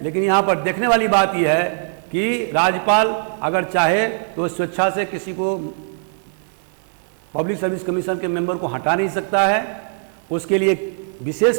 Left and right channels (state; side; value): silent; left; digital silence